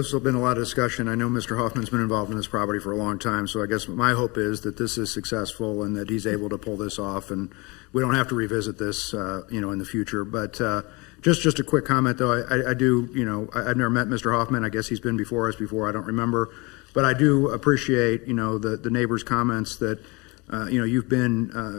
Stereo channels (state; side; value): quieter; right; 26.4 dB